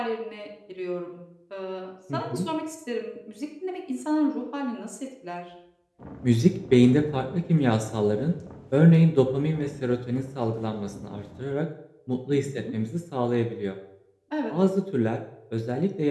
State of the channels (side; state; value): both; identical; correlation 1.00